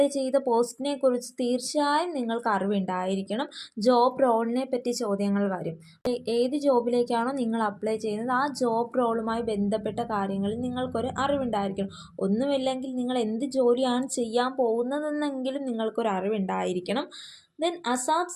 ചെയ്ത പോസ്റ്റിനെ കുറിച്ച് തീർച്ചയായും നിങ്ങൾക്ക് അറിവുണ്ടായിരിക്കണം. ജോബ് റോളിനെ പറ്റി ചോദ്യങ്ങൾ വരും. ഏത് ജോബിലേക്കാണോ നിങ്ങൾ അപ്ലൈ ചെയ്യുന്നത് ആ ജോബ് റോളുമായി ബന്ധപ്പെട്ട കാര്യങ്ങളിൽ നിങ്ങൾക്കൊരു അറിവുണ്ടായിരിക്കണം. ഒന്നുമില്ലെങ്കിൽ നിങ്ങൾ എന്ത് ജോലിയാണ് ചെയ്യാൻ പോകുന്നതെന്നെങ്കിലും നിങ്ങൾക്കൊരു അറിവുണ്ടായിരിക്കണം. ദെൻ അസാപ്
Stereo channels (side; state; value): both; identical; correlation 1.00